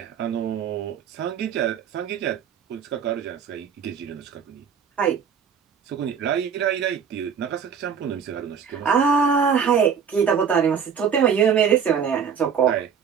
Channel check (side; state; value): left; quieter; 7.1 dB